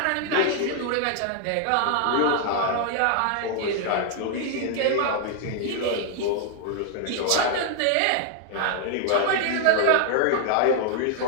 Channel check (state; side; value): different; both; correlation 0.00